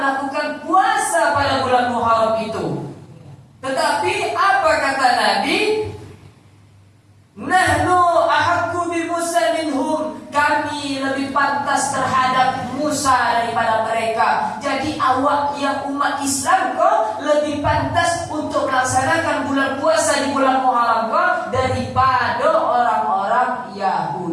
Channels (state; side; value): identical; both; correlation 1.00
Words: puasa pada bulan Muharram itu. Tetapi apa kata Nabi? Nahnu ahaqqu bi Musa minhum. Kami lebih pantas terhadap Musa daripada mereka. Jadi awak yang umat Islam kok lebih pantas untuk melaksanakan bulan puasa di bulan Muharram kok daripada orang-orang